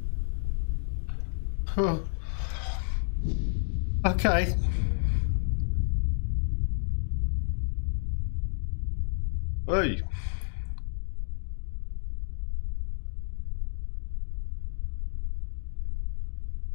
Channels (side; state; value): right; silent; digital silence